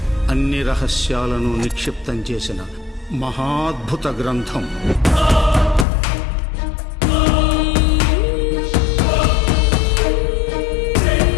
అన్ని రహస్యాలను నిక్షిప్తం చేసిన మహాద్భుత గ్రంథం.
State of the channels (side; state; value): right; drops out; at 5.9 s